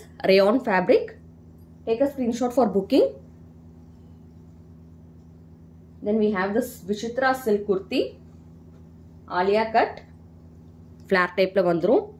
Rayon fabric. Take a screenshot for booking. Then we have this Vichitra silk kurti. Alia cut. Flare type la vandrum.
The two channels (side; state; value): both; identical; correlation 1.00